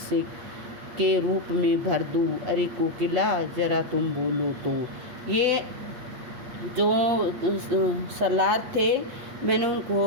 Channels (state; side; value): late; left; 8.4 ms